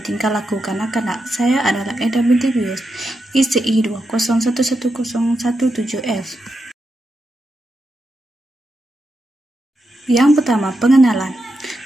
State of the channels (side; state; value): both; normal; correlation 0.86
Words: tingkah laku kanak-kanak. Saya adalah Eda binti Bius, ICI 2011017F. Yang pertama, pengenalan.